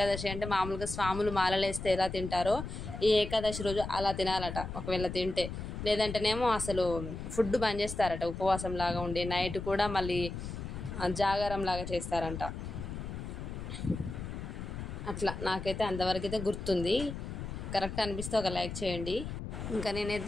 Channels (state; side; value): noise; left; rumble, 7 dB below the sound